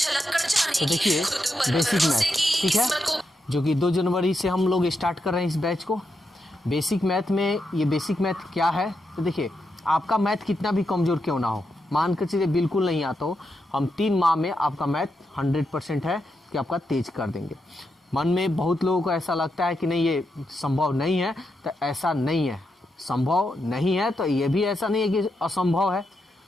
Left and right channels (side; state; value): both; normal; correlation 0.84